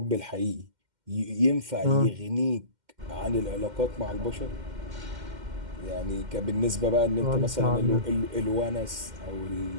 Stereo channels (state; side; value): late; left; 2.1 ms